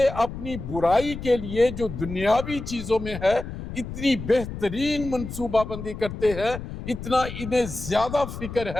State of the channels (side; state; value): left; noise; rumble, 9 dB below the sound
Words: اپنی برائی کے لیے جو دنیاوی چیزوں میں ہے اتنی بہترین منصوبہ بندی کرتے ہیں، اتنا انہیں زیادہ فکر